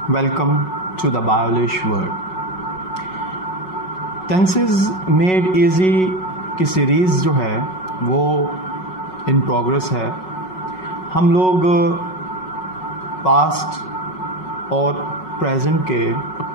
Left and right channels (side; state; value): right; late; 5.4 ms